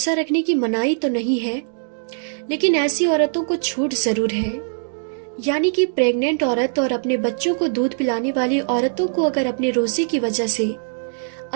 رکھنے کی منائی تو نہیں ہے، لیکن ایسی عورتوں کو چھوٹ ضرور ہے۔ یعنی کہ پریگننٹ عورت اور اپنے بچوں کو دودھ پلانے والی عورتوں کو اگر اپنے روزے کی وجہ سے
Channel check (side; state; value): left; silent; digital silence